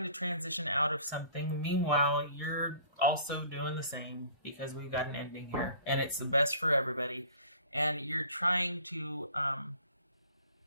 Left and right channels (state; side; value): inverted; both; correlation -0.51